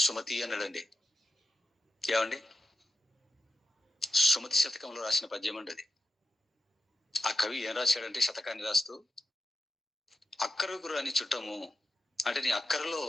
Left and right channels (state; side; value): normal; both; correlation 0.89